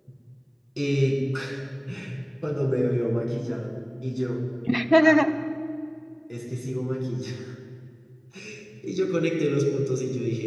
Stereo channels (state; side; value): identical; both; correlation 1.00